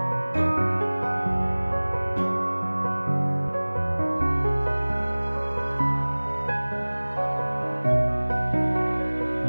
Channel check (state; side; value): inverted; both; correlation -1.00